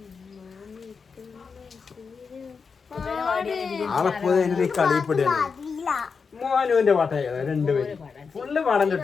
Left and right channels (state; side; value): quieter; right; 5.4 dB